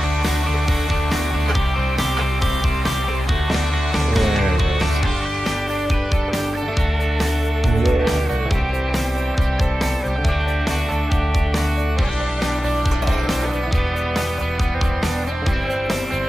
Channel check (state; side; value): normal; both; correlation 0.94